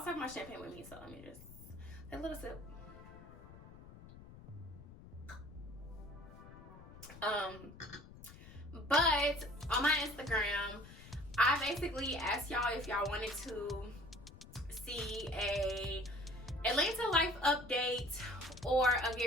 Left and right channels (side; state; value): left; noise; rumble, 17 dB below the sound